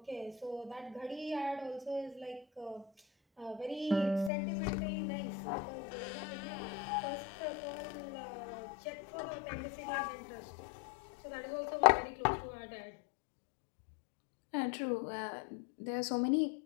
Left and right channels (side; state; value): right; drops out; at 4.3 s